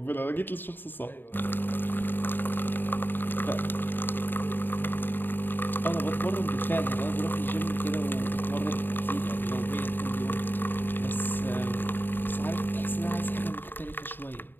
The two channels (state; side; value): late; right; 0.094 ms